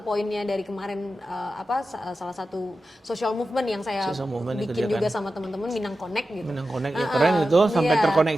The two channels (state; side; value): normal; both; correlation 0.92